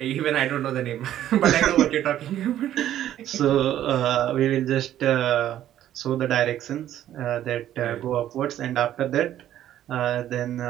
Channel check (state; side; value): quieter; left; 11.9 dB